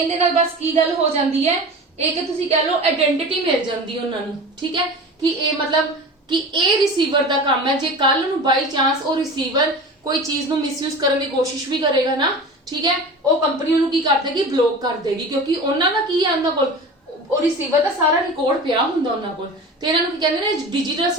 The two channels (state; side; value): normal; both; correlation 0.34